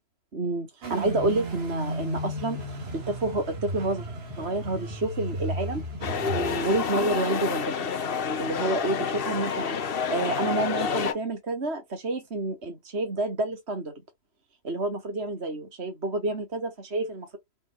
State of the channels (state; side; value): late; left; 2.7 ms